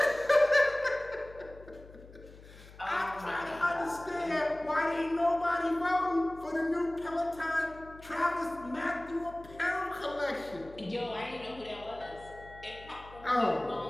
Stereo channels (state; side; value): noise; left; hum, 20 dB below the sound